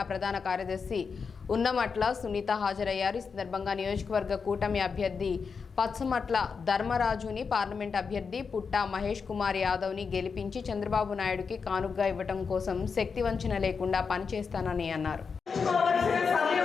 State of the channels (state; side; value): quieter; right; 5.5 dB